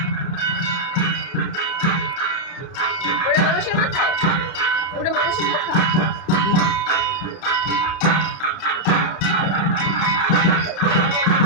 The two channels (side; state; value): right; late; 30 ms